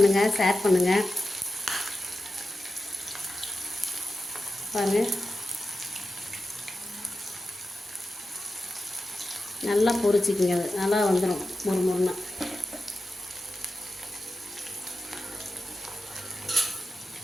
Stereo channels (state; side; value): normal; both; correlation 0.92